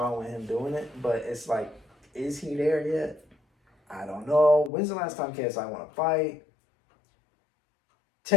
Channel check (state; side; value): drops out; right; at 4.7 s